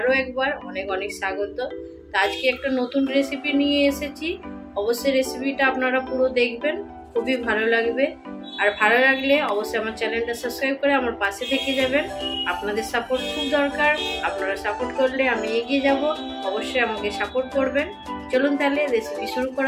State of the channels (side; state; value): both; identical; correlation 1.00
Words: একবার অনেক অনেক স্বাগত। তো আজকে একটা নতুন রেসিপি নিয়ে এসেছি। অবশ্যই রেসিপিটা আপনারা পুরো দেখবেন, খুবই ভালো লাগবে। আর ভালো লাগলে অবশ্যই আমার চ্যানেলটা সাবস্ক্রাইব করে আমার পাশে থেকে যাবেন। আপনাদের সাপোর্ট খুব দরকার, আপনারা সাপোর্ট করলে আমি এগিয়ে যাব। অবশ্যই আমাকে সাপোর্ট করবেন। চলুন তাহলে রেসিপি শুরু